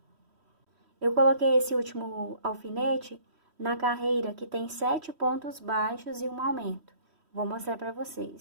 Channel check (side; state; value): left; late; 3.1 ms